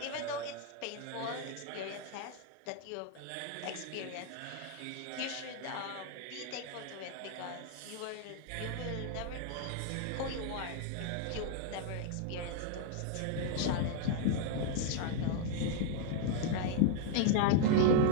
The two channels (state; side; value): different; both; correlation 0.00